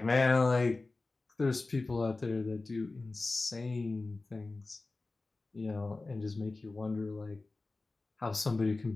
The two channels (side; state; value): right; quieter; 3.4 dB